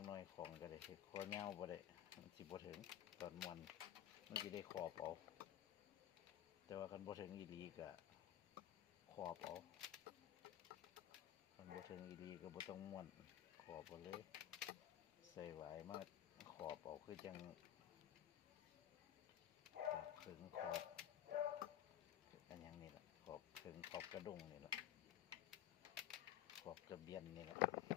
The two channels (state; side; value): quieter; right; 11.6 dB